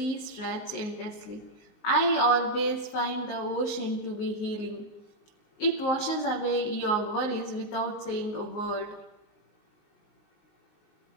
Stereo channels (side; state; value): right; late; 19 ms